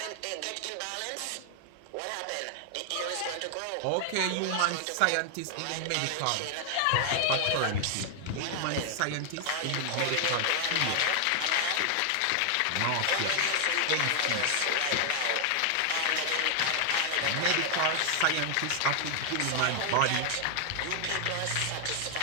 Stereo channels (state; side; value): different; both; correlation 0.00